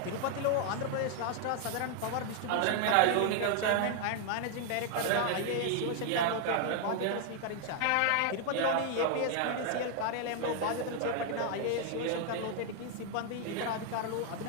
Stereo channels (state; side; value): different; both; correlation 0.00